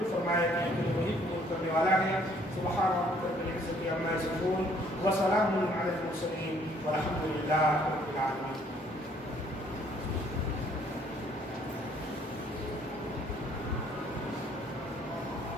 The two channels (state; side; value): normal; both; correlation 0.62